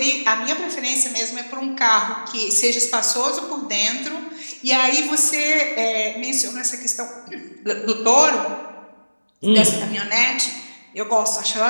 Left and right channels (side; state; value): both; inverted; correlation -1.00